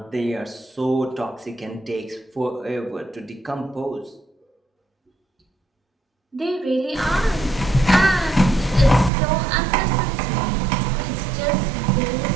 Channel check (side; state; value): left; drops out; at 9.1 s